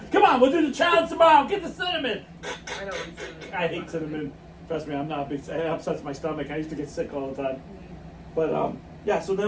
Come on, we'll do the challenge tomorrow. Get the cinnamon. I know. What cinnamon. I hate cinnamon. Trust me, I'm not a big. It upsets my stomach. I used to get sick all the time. But yeah. So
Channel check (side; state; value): both; identical; correlation 1.00